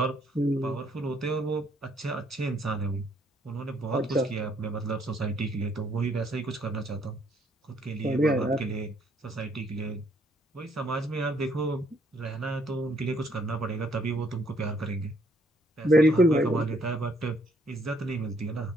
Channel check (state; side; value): normal; both; correlation 0.68